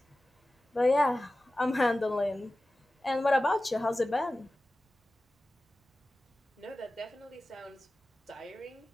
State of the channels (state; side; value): normal; both; correlation 0.96